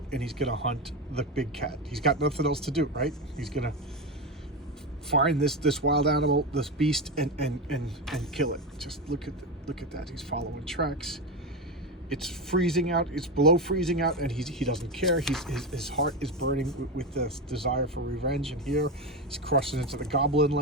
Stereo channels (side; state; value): both; normal; correlation 0.16